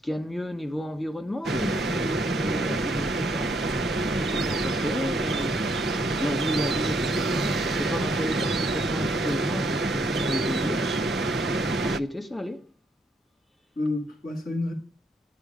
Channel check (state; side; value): normal; both; correlation 0.72